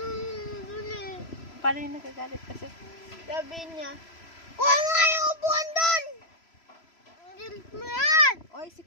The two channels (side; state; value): right; late; 3.0 ms